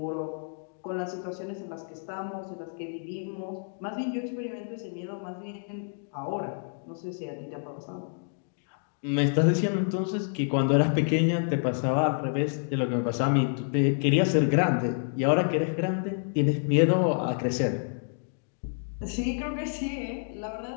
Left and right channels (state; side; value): silent; right; 59 dB below the other